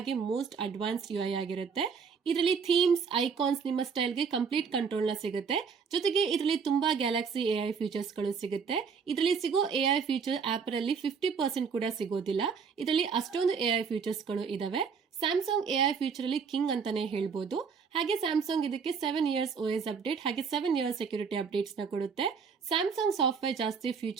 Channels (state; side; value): quieter; left; 5.9 dB